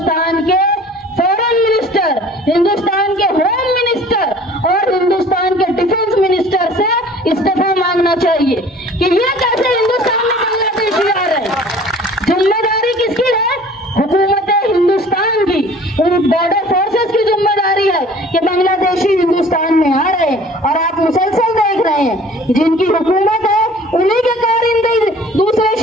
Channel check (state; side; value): normal; both; correlation 0.49